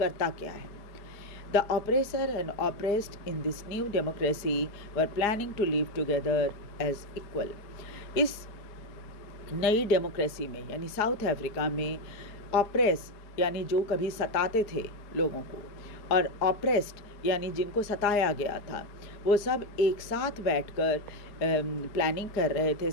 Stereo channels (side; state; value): right; late; 4.9 ms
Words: क्या है। The oppressor and oppressed in this new democracy were planning to live together as equal. इस नई डेमोक्रेसी में यानी साउथ अफ्रीका में ऑप्रेस यानी जो कभी सताते थे लोगों को और ऑप्रेस्ड यानी जिनको सताया गया था, वो सब एक साथ बैठकर प्लानिंग कर रहे थे